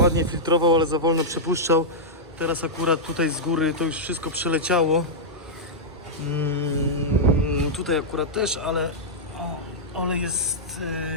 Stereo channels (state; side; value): normal; both; correlation -0.09